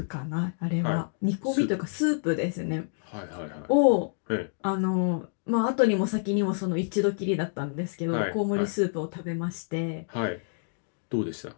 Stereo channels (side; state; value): right; silent; digital silence